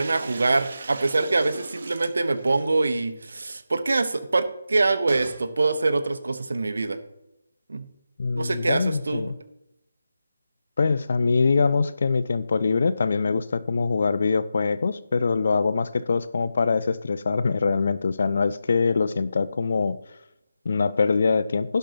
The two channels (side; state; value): both; inverted; correlation -0.90